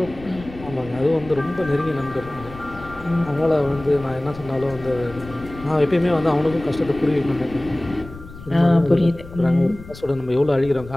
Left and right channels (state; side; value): noise; left; rumble, 16 dB below the sound